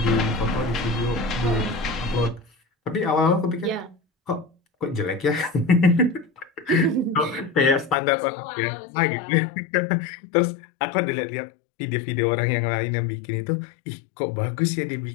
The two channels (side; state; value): right; drops out; at 8.0 s